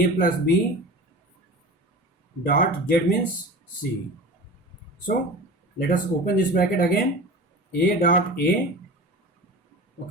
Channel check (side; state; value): both; normal; correlation 0.34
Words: plus b dot z means c. So let us open this bracket again. A dot a,